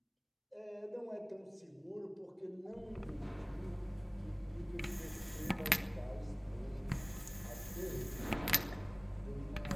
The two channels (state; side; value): identical; both; correlation 1.00